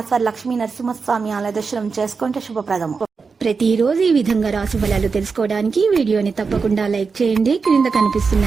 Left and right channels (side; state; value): left; quieter; 5.0 dB